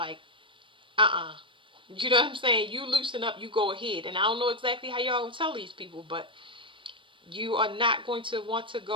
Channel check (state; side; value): late; left; 0.25 ms